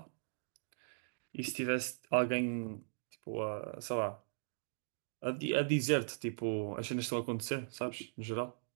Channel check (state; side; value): silent; left; digital silence